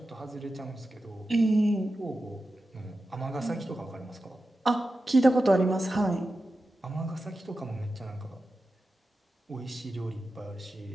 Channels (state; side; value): normal; both; correlation 0.92